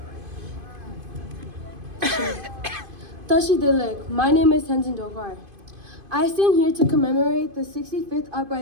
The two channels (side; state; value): left; late; 2.5 ms